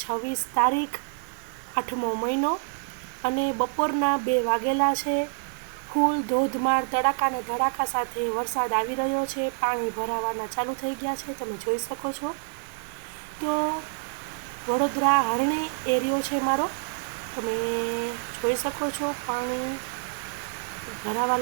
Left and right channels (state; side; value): silent; left; 60 dB below the other